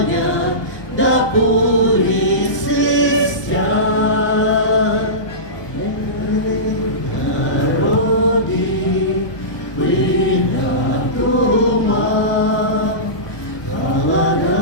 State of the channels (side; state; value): right; late; 1.2 ms